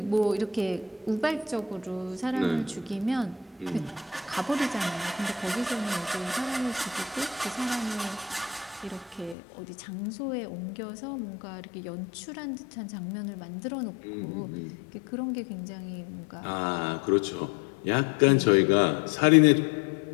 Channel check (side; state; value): right; drops out; at 9.3 s